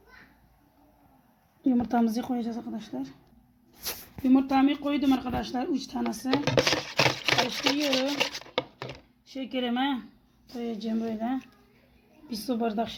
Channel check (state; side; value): identical; both; correlation 1.00